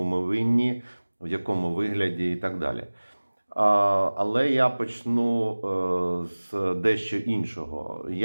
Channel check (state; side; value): inverted; both; correlation -1.00